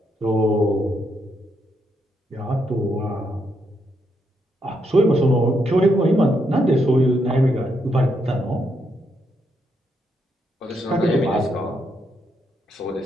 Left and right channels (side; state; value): both; normal; correlation 0.78